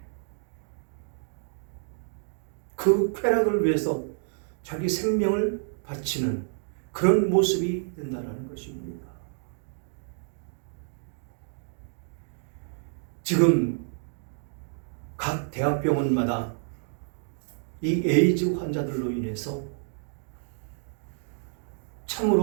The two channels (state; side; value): silent; left; digital silence